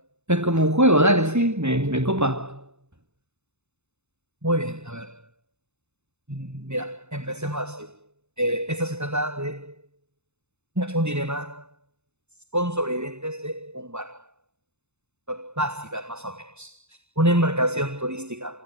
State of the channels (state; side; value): late; left; 0.82 ms